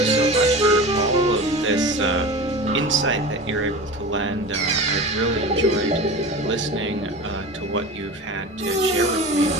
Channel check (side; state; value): both; normal; correlation 0.32